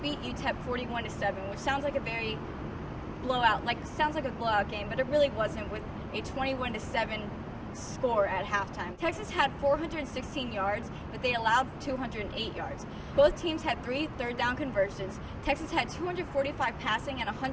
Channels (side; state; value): both; identical; correlation 1.00